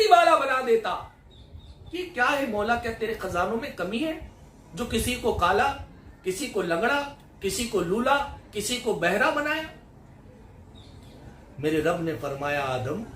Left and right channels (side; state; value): both; identical; correlation 1.00